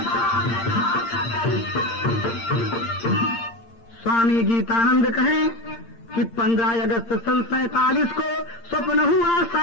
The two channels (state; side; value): late; right; 8.7 ms